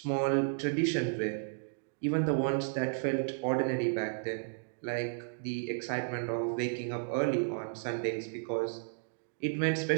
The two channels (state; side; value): silent; left; digital silence